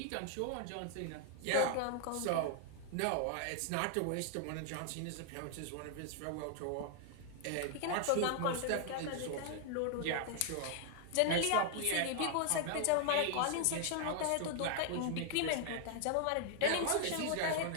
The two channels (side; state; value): both; different; correlation 0.00